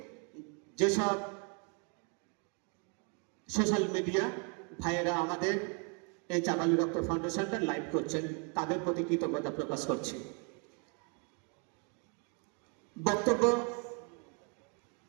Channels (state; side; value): quieter; left; 36.9 dB